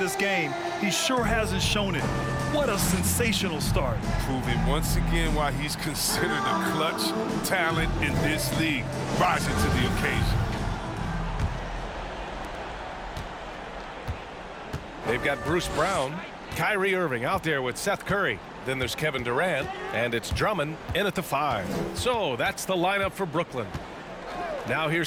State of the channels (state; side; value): identical; both; correlation 1.00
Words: game, he sure hasn't shown it. What a sensational start. Proving once again why he's considered a clutch talent in this league, rising to the occasion. They've got Bruce Brown, Kyrie Irving out there with Seth Curry. Then there's Kevin Durant, and it's Drummond in at the 5. So that's the lineup for Brooklyn. Now